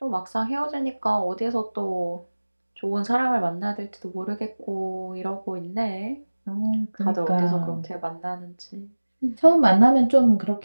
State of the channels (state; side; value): inverted; both; correlation -1.00